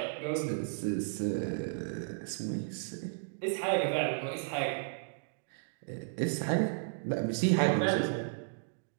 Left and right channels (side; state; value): left; silent; digital silence